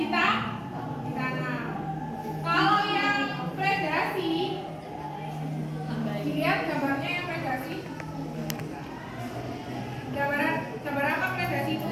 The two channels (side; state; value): both; identical; correlation 1.00